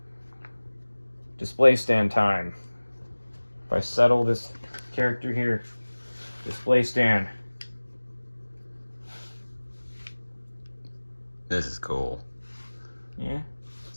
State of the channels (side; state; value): both; inverted; correlation -1.00